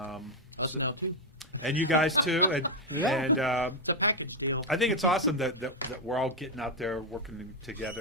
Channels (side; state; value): both; normal; correlation 0.03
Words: now too. And you guys too, and the package deal. I think it's awesome that we're all getting out there working